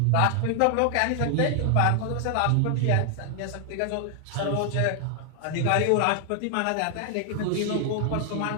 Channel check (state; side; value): different; both; correlation 0.00